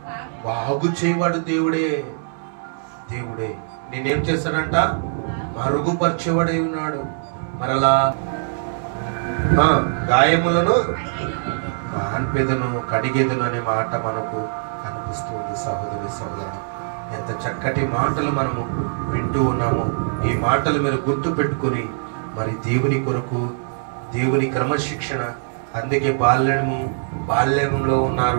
బాగు చేయవాడు దేవుడే. దేవుడే నేనేం చేస్తాడంట? మరుగుపరచబడై ఉన్నాడు. మరలా గాయములను మాన్పెదను కడిగేదను అనే మాట మనకు కనిపిస్తుంది సహోదరి సహోదరుడు. ఎంత చక్కటి మాటలు మనము వింటూ ఉన్నామో ఈ మాటలు మీరు గుర్తు పెట్టుకుని మరి దేవుని కొరకు, దేవుని క్రమశిక్షణ. అందుకే బాల్యంలో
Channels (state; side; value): silent; left; digital silence